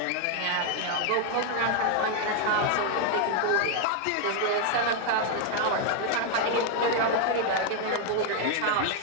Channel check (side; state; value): both; different; correlation 0.00